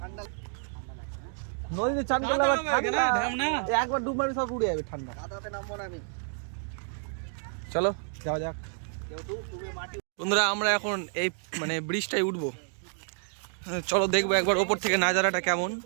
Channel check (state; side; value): silent; left; 58 dB below the other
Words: নদীতে চান করলে একবার ডুব মারবে, সব উড়ে যাবে ঠান্ডা। চলো যাওয়া যাক। বন্ধুরা আমরা এখন এই মানে ব্রিজটাই উঠবো। চলো দেখবো একবার ওপর থেকে নাজারাটা কেমন